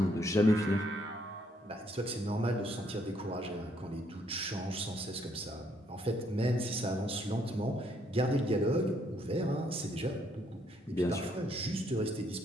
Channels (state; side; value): normal; both; correlation 0.70